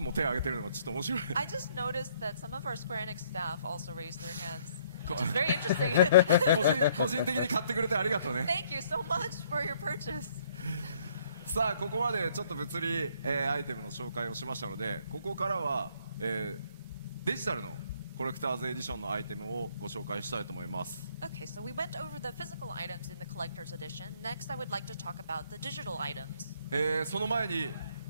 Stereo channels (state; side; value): inverted; both; correlation -0.64